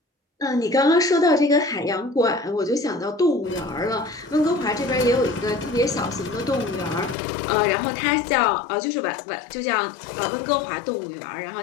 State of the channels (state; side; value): drops out; right; at 7.2 s